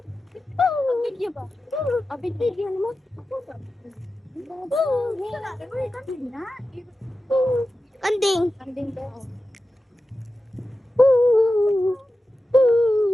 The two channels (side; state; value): both; normal; correlation 0.93